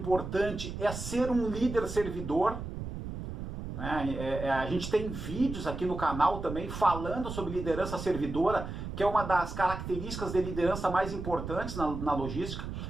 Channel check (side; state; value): right; noise; rumble, 7 dB below the sound